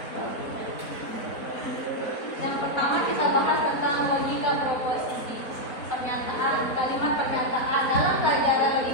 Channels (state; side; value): late; right; 4.0 ms